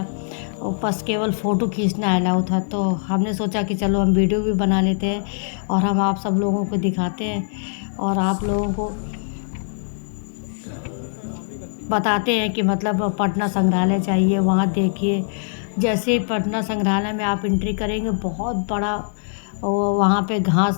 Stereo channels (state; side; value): silent; right; 61 dB below the other